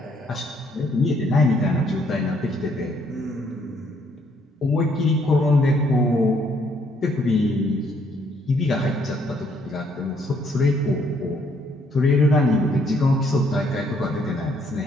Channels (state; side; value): normal; both; correlation 0.68